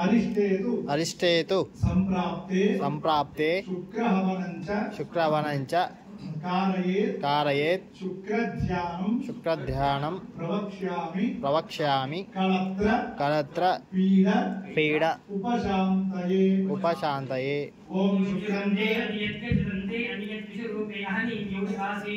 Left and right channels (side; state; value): both; identical; correlation 1.00